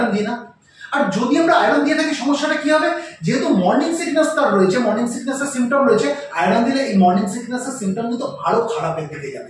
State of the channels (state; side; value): identical; both; correlation 1.00